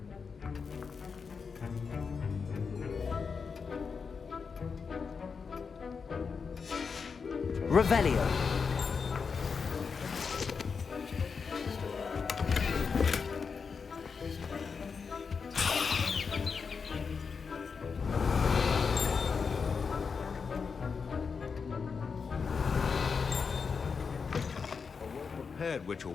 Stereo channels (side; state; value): right; quieter; 5.5 dB